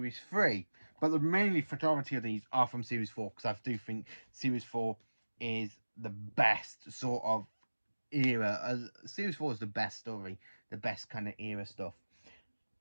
3, but the mainly majority of these are from series 4, because I do think series 4 is the best sort of era. Series 4 is the best story, the best kind of era stuff.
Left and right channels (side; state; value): both; inverted; correlation -1.00